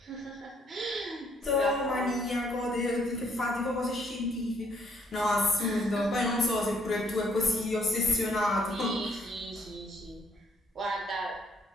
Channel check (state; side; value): normal; both; correlation 0.69